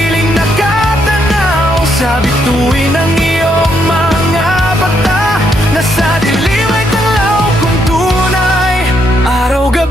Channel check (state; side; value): normal; both; correlation 0.75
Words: nakatanaw sa bituin ng iyong mga bata, na sa dilim ay tanglaw kung tunay.